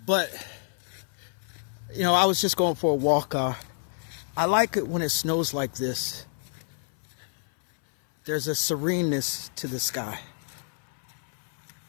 But, you know, I was just going for a walk. I like it when it snows like this. There's a sereneness to the sky.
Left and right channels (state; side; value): silent; right; 59 dB below the other